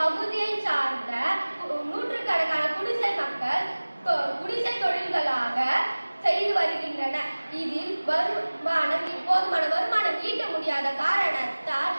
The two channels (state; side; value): inverted; both; correlation -1.00